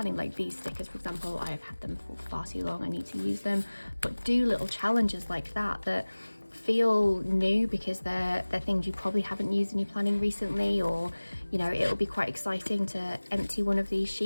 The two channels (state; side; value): inverted; both; correlation -1.00